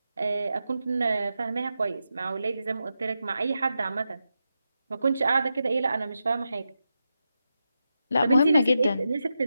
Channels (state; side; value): inverted; both; correlation -0.88